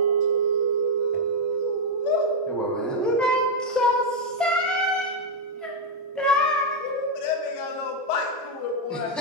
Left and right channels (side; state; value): both; normal; correlation 0.01